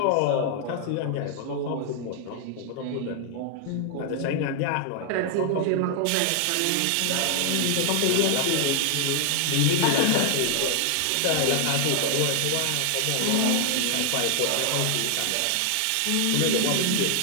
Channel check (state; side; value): different; both; correlation 0.00